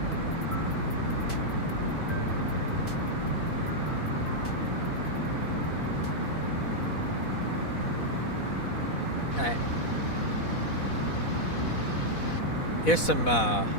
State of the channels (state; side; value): late; right; 4.1 ms